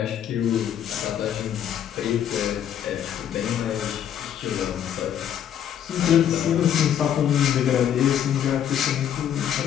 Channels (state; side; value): quieter; right; 9.8 dB